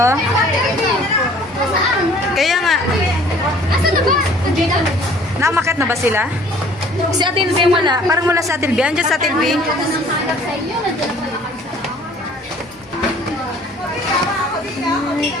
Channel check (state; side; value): normal; both; correlation 0.53